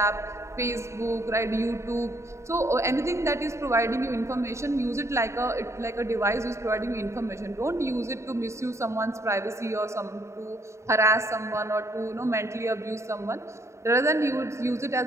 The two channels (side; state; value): left; late; 0.14 ms